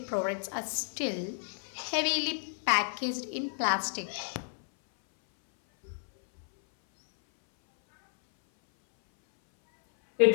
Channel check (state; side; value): silent; right; 57 dB below the other